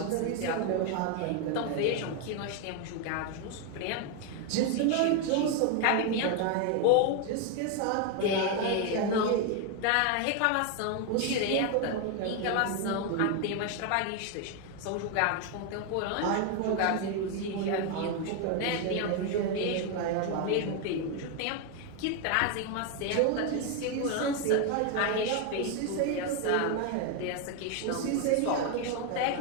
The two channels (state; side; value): different; both; correlation 0.01